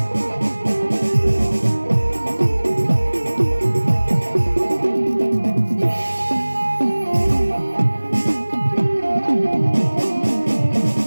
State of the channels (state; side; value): inverted; both; correlation -1.00